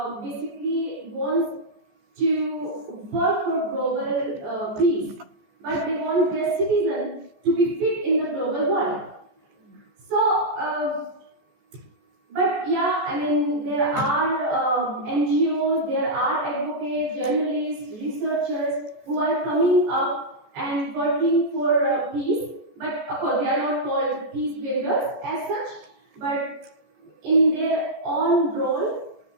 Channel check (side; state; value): left; late; 14 ms